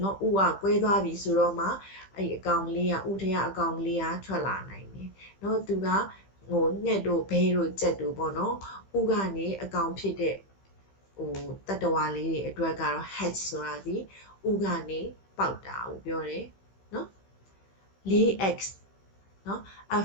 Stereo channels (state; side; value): late; right; 15 ms